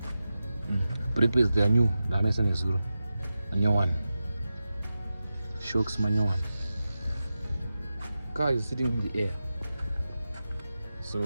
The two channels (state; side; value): inverted; both; correlation -0.92